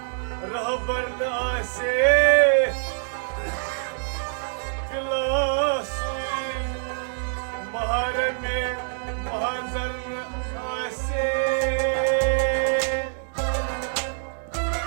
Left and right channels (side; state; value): left; silent; digital silence